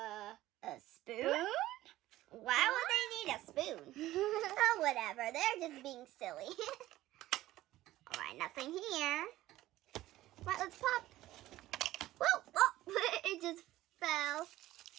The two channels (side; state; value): left; quieter; 15.6 dB